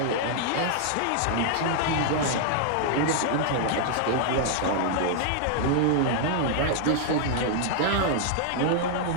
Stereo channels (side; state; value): both; different; correlation -0.01